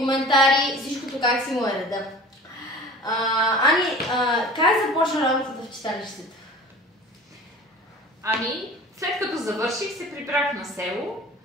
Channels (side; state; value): both; normal; correlation 0.41